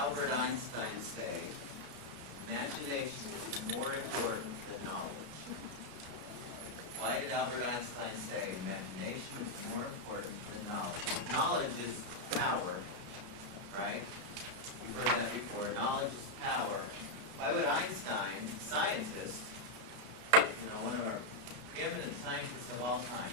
Einstein say imagination is more important than knowledge? Why did Albert Einstein say imagination is more important than knowledge? Knowledge is power, right? You've heard that before. Knowledge is power. Why would Einstein, scientist, one of our preeminent scientists of all time,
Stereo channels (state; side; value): late; left; 33 ms